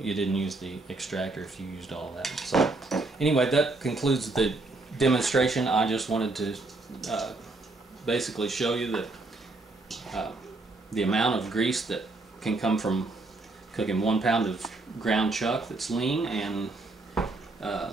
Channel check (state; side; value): quieter; left; 3.2 dB